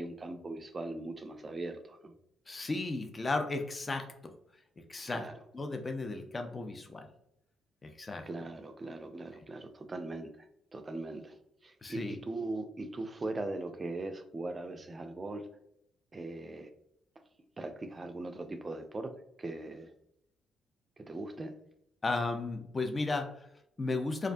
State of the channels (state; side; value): normal; both; correlation 0.86